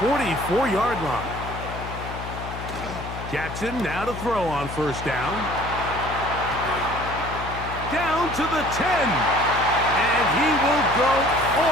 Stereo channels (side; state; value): left; noise; hum, 9 dB below the sound